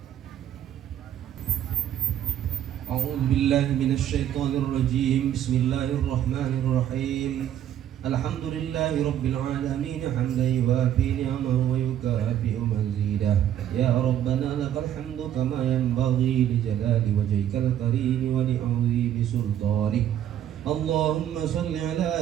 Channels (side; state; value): left; quieter; 10.8 dB